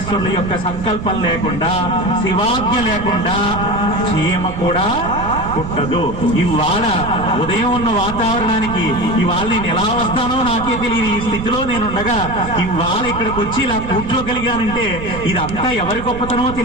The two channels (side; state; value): right; noise; rumble, 9 dB below the sound